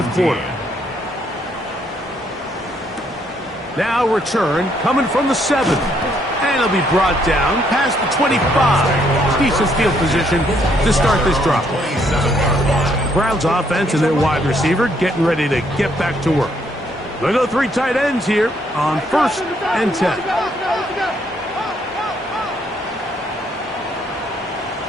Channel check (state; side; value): normal; both; correlation 0.70